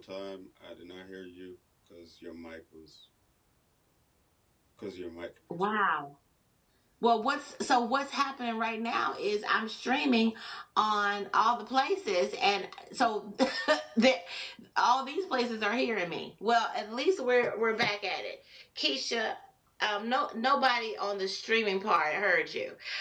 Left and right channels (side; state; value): both; identical; correlation 1.00